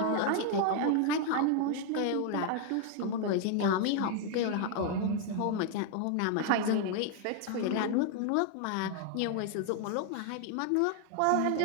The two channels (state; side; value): different; both; correlation 0.00